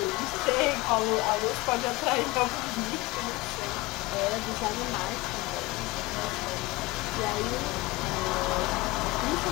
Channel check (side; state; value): right; quieter; 21.8 dB